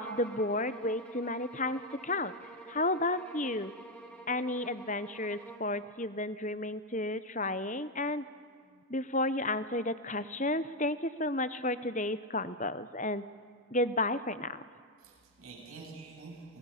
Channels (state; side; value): normal; both; correlation 0.06